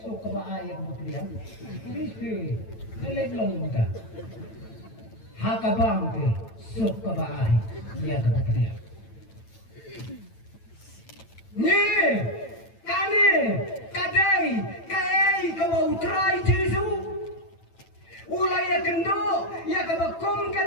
sok kabaai ya kabapediang biske kelek long muta hakabang te sok kabaai ya kabapediang ni kane kadai kai kabau trai Jesu ulai ya kendo ya kabakom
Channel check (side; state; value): right; late; 9.0 ms